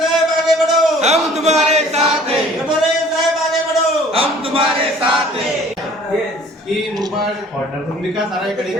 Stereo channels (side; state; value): both; normal; correlation 0.52